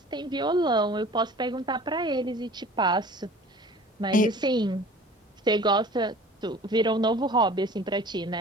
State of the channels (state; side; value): normal; both; correlation 0.45